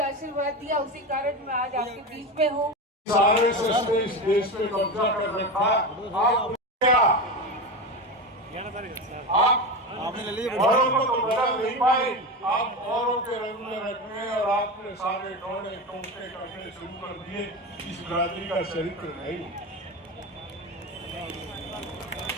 आशीर्वाद दिया, उसी कारण मैं आज आपके बीच में हूँ। आरएसएस ने इस देश पे कब्जा कर रखा। आप क्या आप औरों को तो बदल नहीं पाए, आप औरों के रंग में रखने और आपने सारे टोने टोटे करने शुरू कर दिए। इस बिरादरी का चरित्र नहीं।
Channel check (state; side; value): normal; both; correlation 0.21